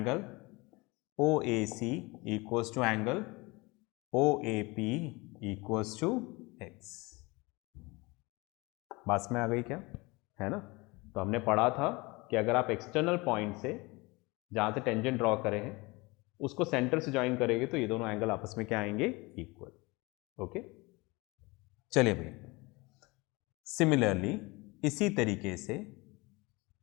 OAC equals to angle OAP equals to x। बात में आ गई क्या, है ना। तो हमने पढ़ा था कि अगर आप एक्सटर्नल पॉइंट से जहाँ से टेंजेंट ड्रॉ करे हैं उसको सेंटर से ज्वाइन करेंगे तो ये दोनों एंगल आपस में क्या आएंगे, इक्वल। ओके, चलिए भाई, सिमिलरली इसी तरीके से,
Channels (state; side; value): quieter; right; 24.6 dB